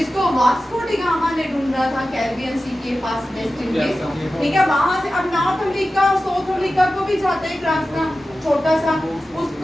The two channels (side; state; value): both; normal; correlation 0.94